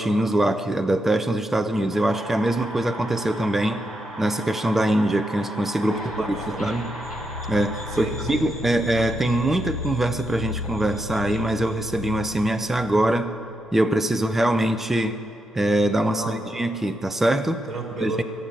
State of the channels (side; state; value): both; normal; correlation 0.83